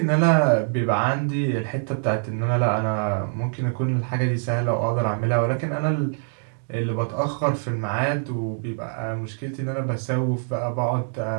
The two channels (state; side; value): silent; left; digital silence